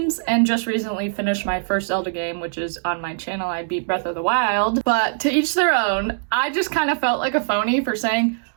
and just recently finished my first Zelda game, which is on my channel. I beat Breath of the Wild, but to each their own. I just kind of felt like a phony for saying,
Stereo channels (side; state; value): left; silent; digital silence